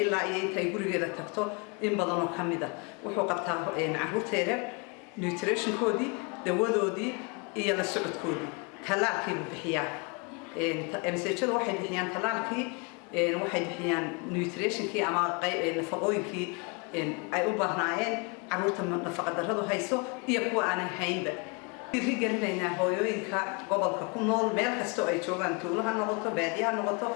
ilaa iyo inta ay gurigeeda tagto in badan oo kamid ah wuxuu qabtaa caruurteeda nutritionkoodii dawadoodii iyo la socodkoodii talaalkii buu bixiyaa MCH-du waxay bixiyaan talaalkii waxay bixiyaan nutritionkii ama nafaqooyinkii ay u baahnaayeen caruurta nafaqadarradu hayso iyo kuwa aanan haynba dhiirigelinaynaa hooyooyinka gobolka ku nool meel kastoo ay joogaan tuulo ha noqoto baadiye ha noqoto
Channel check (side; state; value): right; quieter; 32.1 dB